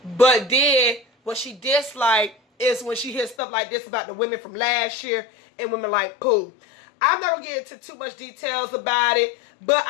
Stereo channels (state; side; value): drops out; right; at 3.4 s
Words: But then what she disliked is when she hears stuff like this about the women from last year and women like Pooh. I'm not going to get into too much details about it. But